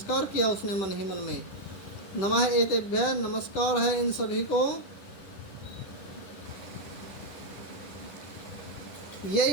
किया उसने मन ही मन में। नमः एतेभ्यः, नमस्कार है इन सभी को।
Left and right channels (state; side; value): late; right; 10 ms